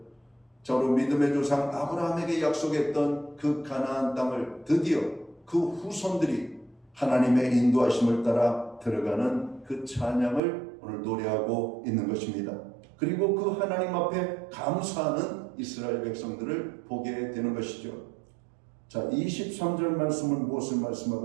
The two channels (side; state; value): left; drops out; at 10.4 s